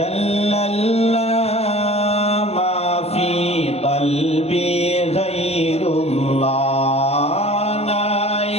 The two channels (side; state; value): right; late; 0.30 ms